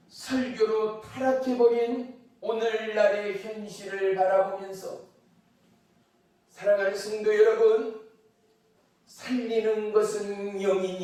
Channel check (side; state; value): both; identical; correlation 1.00